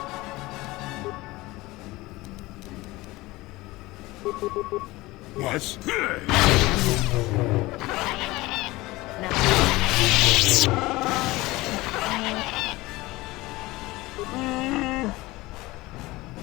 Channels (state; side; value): quieter; right; 20.1 dB